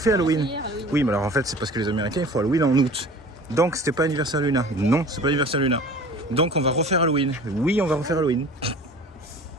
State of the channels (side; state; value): both; normal; correlation 0.43